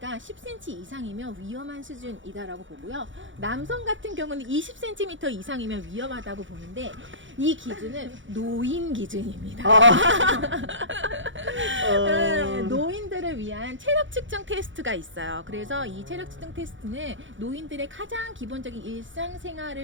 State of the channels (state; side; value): late; left; 0.56 ms